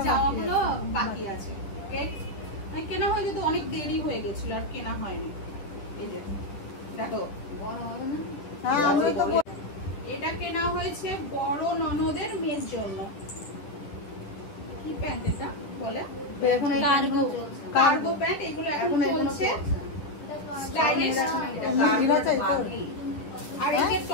বাকি আছে। কেনা হয়ে যেত, অনেক দেরি হয়ে গেছিল আর কেনা হয়নি। এই যে দেখো, এটা কেনা হয়েছে বড় ননদের মেয়ের জন্য। কি প্যান্ট এটা বলে? কার্গো প্যান্ট, এগুলো এখন চলছে স্টাইলিশ। আর এই যে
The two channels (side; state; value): right; late; 10 ms